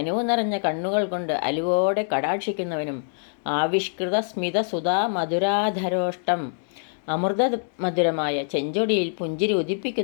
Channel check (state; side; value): silent; right; digital silence